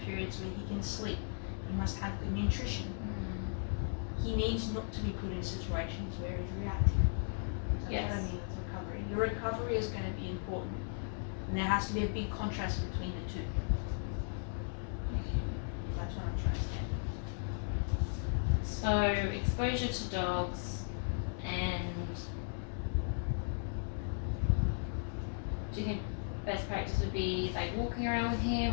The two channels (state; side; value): silent; right; digital silence